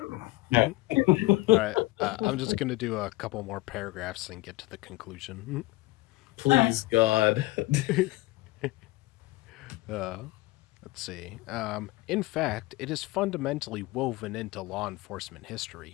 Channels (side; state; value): right; quieter; 19.9 dB